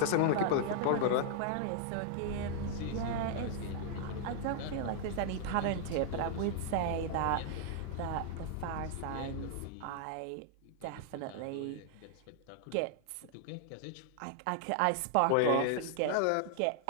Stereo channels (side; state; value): both; different; correlation -0.01